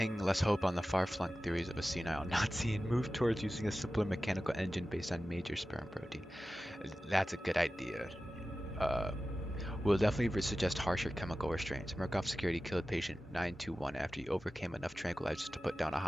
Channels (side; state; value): both; normal; correlation 0.95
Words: less hope on the far-flung theories of a senile Nazi and move towards using a simpler mechanical engine based on major sperm protein. That's a good idea. We'll definitely suggest harsher chemical restraints. Murkoff Security killed patient 921 after he overcame enough tranquilizers to put down a